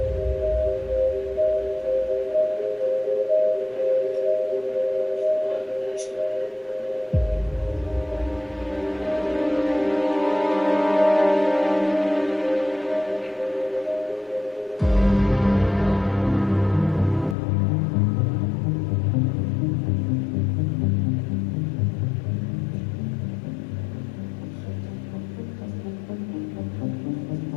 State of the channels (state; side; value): drops out; right; at 17.4 s